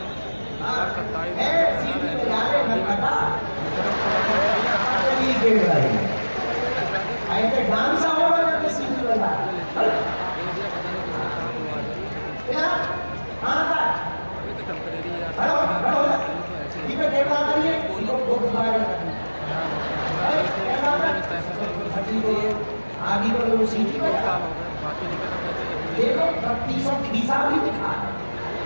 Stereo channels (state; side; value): inverted; both; correlation -1.00